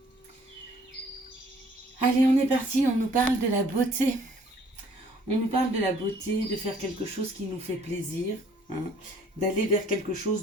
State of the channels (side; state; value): both; normal; correlation 0.59